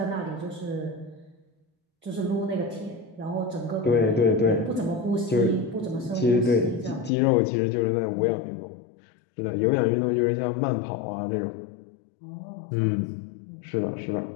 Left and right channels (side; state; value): right; drops out; at 7.1 s